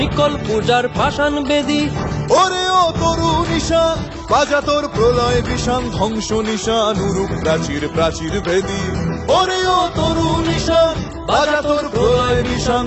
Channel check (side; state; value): both; identical; correlation 1.00